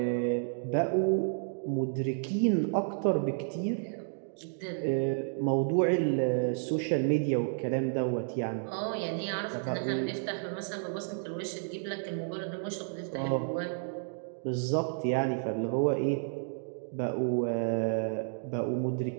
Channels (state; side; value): silent; left; digital silence